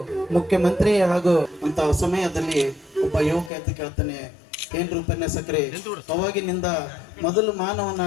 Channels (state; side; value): drops out; right; at 3.5 s